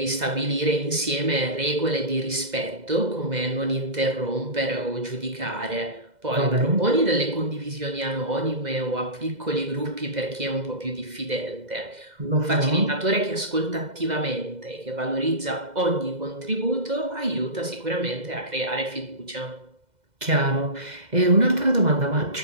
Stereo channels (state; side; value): late; left; 2.0 ms